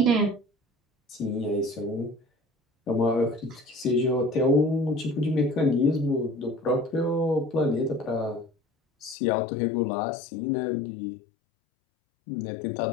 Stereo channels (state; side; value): drops out; right; at 9.2 s